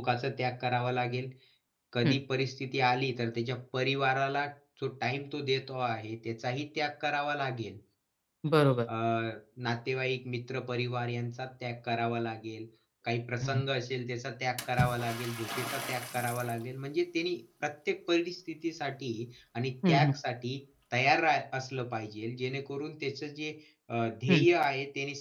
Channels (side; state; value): both; identical; correlation 1.00